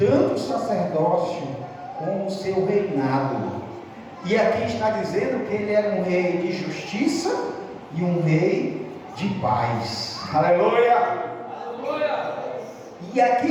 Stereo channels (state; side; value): identical; both; correlation 1.00